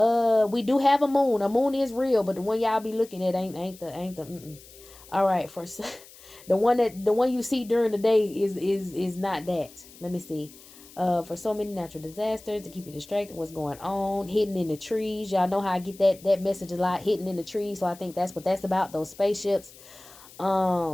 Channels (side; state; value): left; noise; hiss, 21 dB below the sound